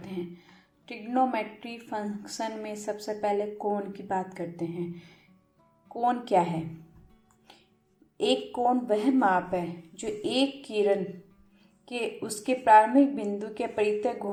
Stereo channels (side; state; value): both; identical; correlation 1.00